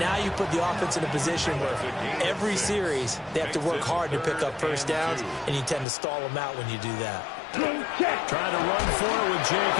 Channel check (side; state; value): right; drops out; at 5.9 s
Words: Now you put the offense in a position where every series they have to work hard to pick up 1st downs, and you tend to stall them out when you do that. Trying to run for it with